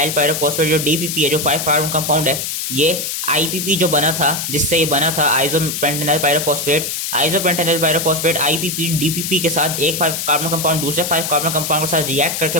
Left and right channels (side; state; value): left; noise; hiss, 3 dB below the sound